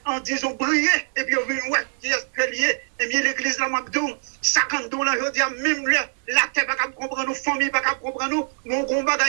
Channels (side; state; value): left; silent; digital silence